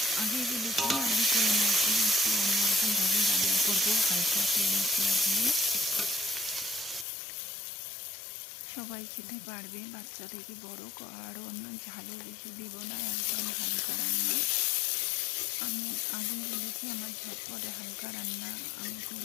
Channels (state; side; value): drops out; right; at 7.1 s